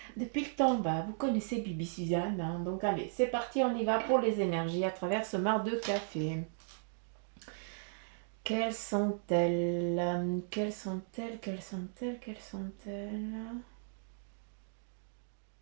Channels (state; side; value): silent; left; digital silence